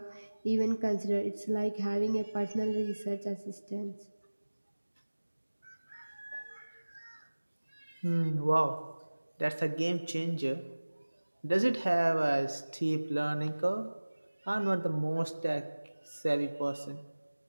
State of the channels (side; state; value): both; inverted; correlation -1.00